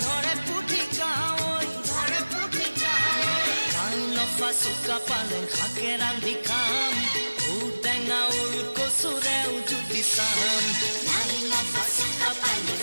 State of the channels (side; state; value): both; inverted; correlation -1.00